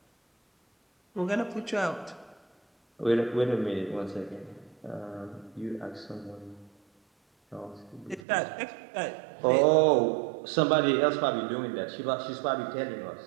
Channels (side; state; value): left; drops out; at 8.2 s